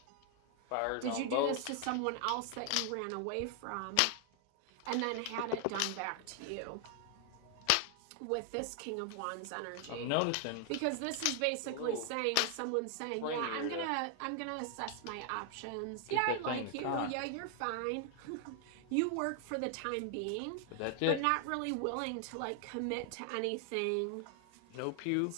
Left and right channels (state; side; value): different; both; correlation 0.00